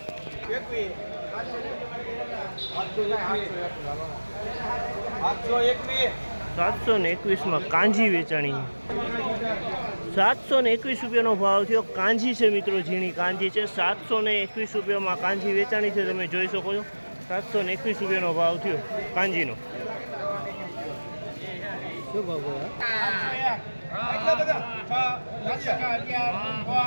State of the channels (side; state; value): both; inverted; correlation -1.00